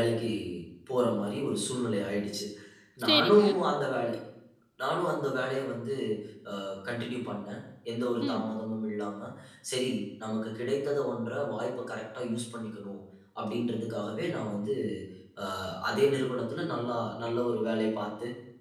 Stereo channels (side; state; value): both; identical; correlation 1.00